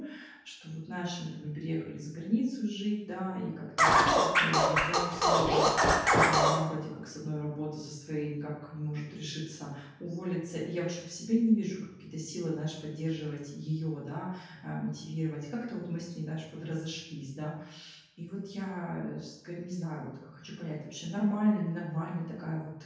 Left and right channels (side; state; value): both; identical; correlation 1.00